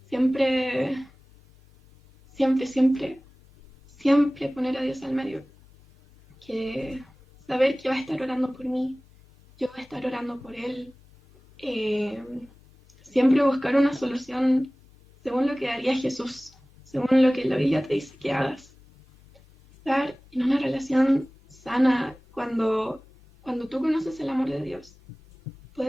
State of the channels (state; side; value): normal; both; correlation 0.98